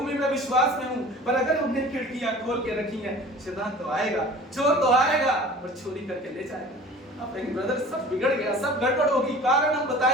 में मैं विश्वास में हूं, पर अगर हमने खिड़कियां खोल के रखी हैं शैतान तो आएगा, चोर तो आएगा और चोरी करके ले जाएगा। आप कहेंगे ब्रदर सब बिगड़ गया, सब गड़बड़ होगी, कारण हम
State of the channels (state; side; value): normal; both; correlation 0.43